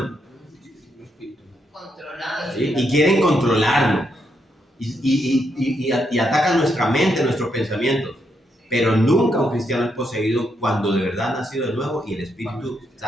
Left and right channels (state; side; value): normal; both; correlation 0.79